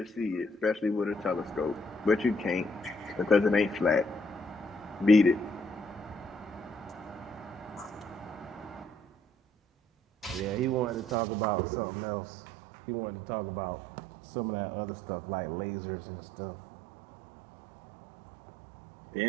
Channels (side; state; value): left; drops out; at 11.2 s